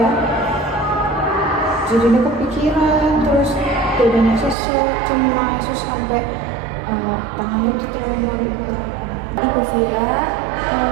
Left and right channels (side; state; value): left; drops out; at 4.5 s